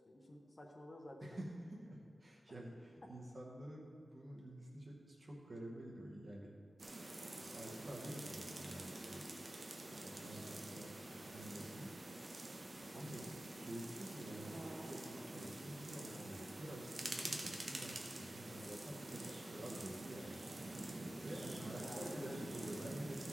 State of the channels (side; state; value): both; normal; correlation 0.95